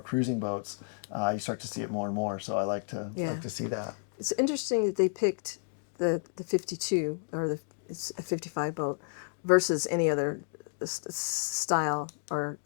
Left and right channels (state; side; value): silent; right; digital silence